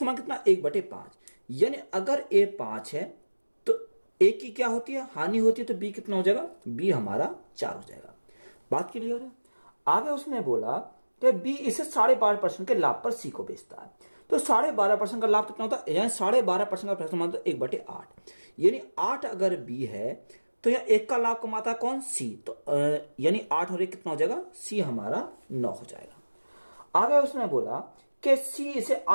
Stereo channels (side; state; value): both; inverted; correlation -1.00